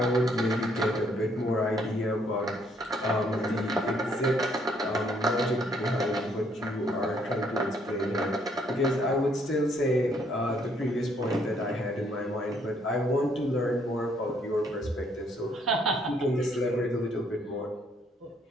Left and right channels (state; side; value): normal; both; correlation 0.67